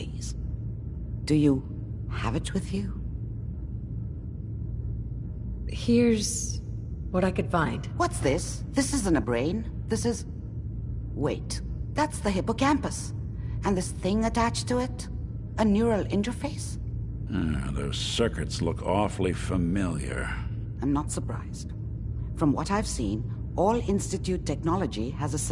Do you have it with you? Here's what I could find. What's this? This isn't a brain. This is... Wait. That's the hippocampus. And this thing attached to it? A neural interface? Those circuits look awfully familiar. I'm not surprised. From what I've seen, all Institute technology has a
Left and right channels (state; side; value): identical; both; correlation 1.00